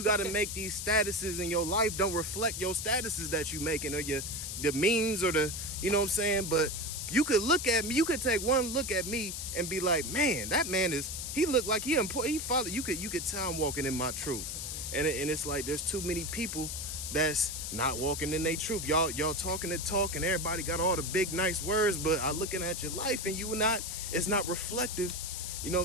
got to make these statuses in your life don't reflect your statuses that you making, or the memes, or the, you know what I'm saying. But you could look at me, you could take one look at me and be like, man, that man he looked like he followed. You could tell I'm walking in my truth, and it's like there's too many people that's not walking in their truth. Y'all talking the talk, and everybody got all the big nice words, but I looking at your life and it's not reflective. You know what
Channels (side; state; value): left; noise; hiss, 5 dB below the sound